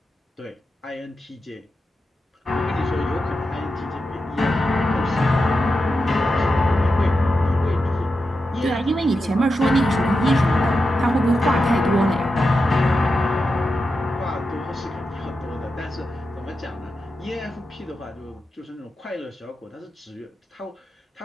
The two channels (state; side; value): normal; both; correlation 0.89